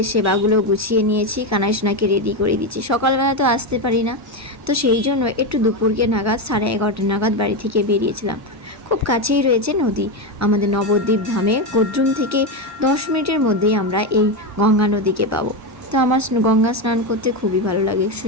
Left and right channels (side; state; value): both; normal; correlation 0.11